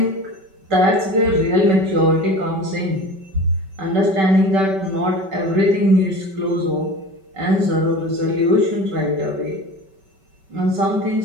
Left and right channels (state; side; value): late; left; 5.2 ms